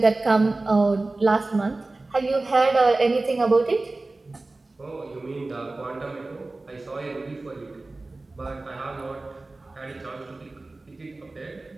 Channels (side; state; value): left; quieter; 3.2 dB